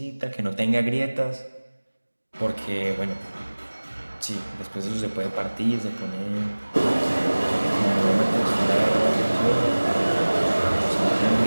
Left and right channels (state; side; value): inverted; both; correlation -1.00